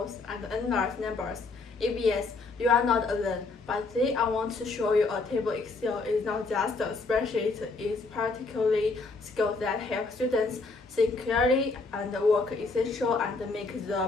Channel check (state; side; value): quieter; right; 3.8 dB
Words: and endless numbers? If yes, you are not alone, but today I want to show you a table. Excel is not just a spreadsheet, it's particularly skills that help students think clearly and work essential and make